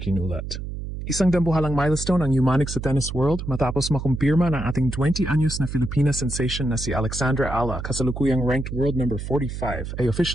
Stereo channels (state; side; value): noise; right; hum, 7 dB below the sound